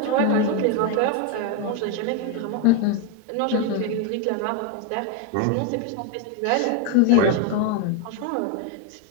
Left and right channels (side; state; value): both; different; correlation 0.02